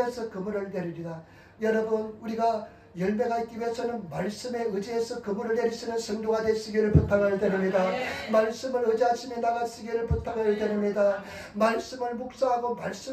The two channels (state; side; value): identical; both; correlation 1.00